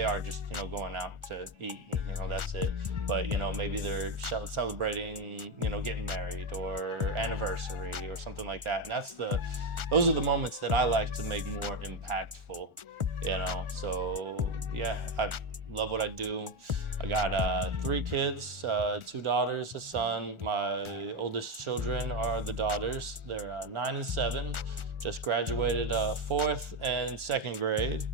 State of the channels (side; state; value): left; late; 1.4 ms